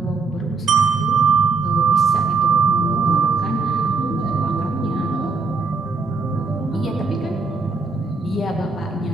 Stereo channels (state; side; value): quieter; left; 4.3 dB